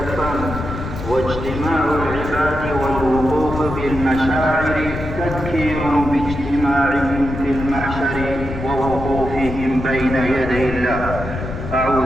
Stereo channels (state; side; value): noise; left; rumble, 7 dB below the sound